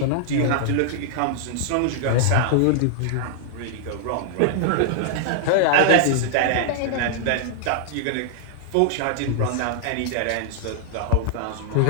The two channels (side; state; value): both; different; correlation -0.01